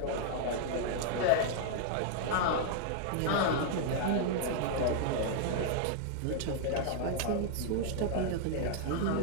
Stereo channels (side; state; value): both; different; correlation -0.01